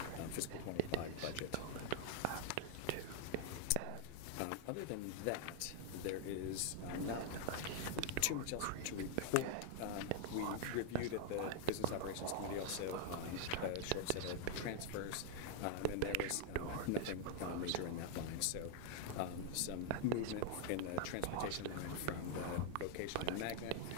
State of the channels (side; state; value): both; different; correlation 0.00